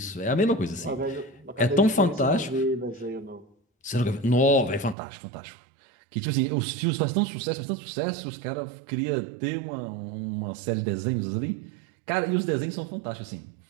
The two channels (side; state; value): left; drops out; at 5.0 s